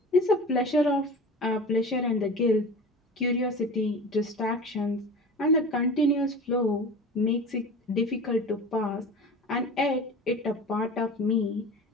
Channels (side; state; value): both; normal; correlation 0.35